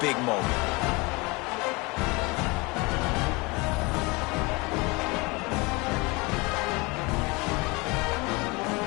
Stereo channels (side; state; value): right; quieter; 26.0 dB